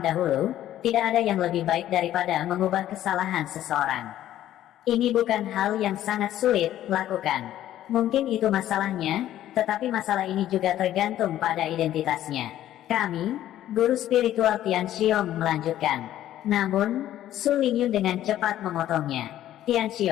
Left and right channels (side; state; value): right; quieter; 12.6 dB